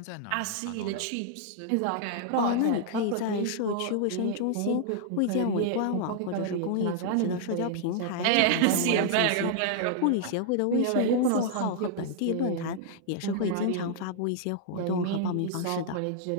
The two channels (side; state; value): both; different; correlation -0.01